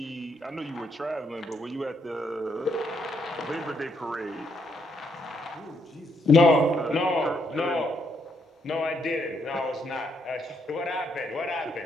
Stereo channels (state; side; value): normal; both; correlation 0.75